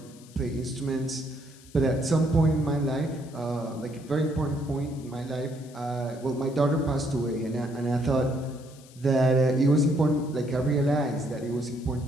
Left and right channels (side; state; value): left; noise; hiss, 24 dB below the sound